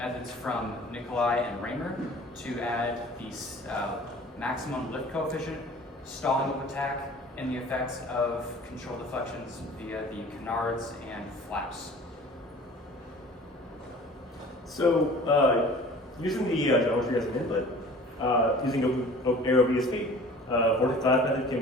from Nikolai and Raymer to add the maximum lift coefficient, stalling of attack, and the effects of control deflections via the canards and flaps. So, using the geometry as an input, using AeroVSP, vortex dive method can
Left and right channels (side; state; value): both; normal; correlation 0.46